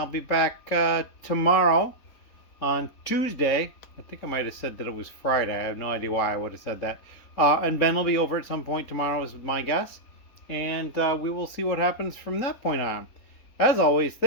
be back tomorrow on Tuesday. I think I might have said that it was Friday. I have no idea why I would have said that. And Ben will be over at some point tomorrow, is my guess. And we will see what happens from that point on. As always,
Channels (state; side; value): late; right; 3.8 ms